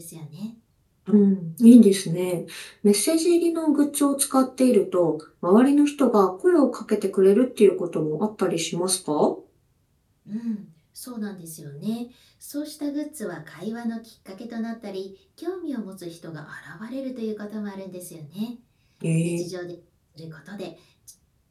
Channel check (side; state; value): both; identical; correlation 1.00